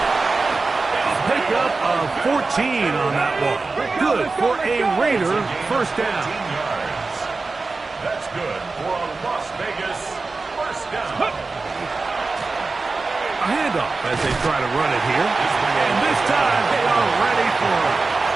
A pickup of 14 on that one. Good for a Raider 1st down. 15 yards. That's good for a Las Vegas 1st down. A handoff as they try to run it here. And this time they are ready for it.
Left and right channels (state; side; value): quieter; left; 3.8 dB